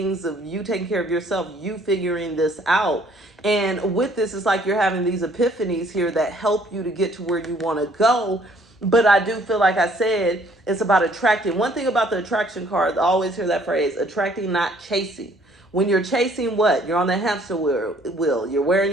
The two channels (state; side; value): normal; both; correlation 0.60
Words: of you taking care of yourself, you figuring this out. And with this, it's like you're having these epiphanies here that help you to get to where you want to go. But I do feel like I said, it's about attracting. One thing about the attraction card, I always hear that phrase, attracting, not chasing. When you're chasing what? You're on the hamster wheel. You're wearing